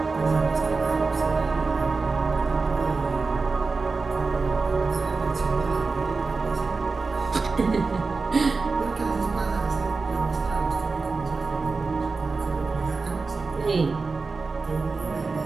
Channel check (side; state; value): left; quieter; 4.2 dB